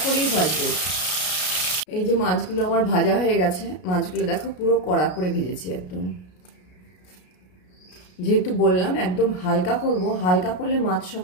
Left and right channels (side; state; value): right; late; 33 ms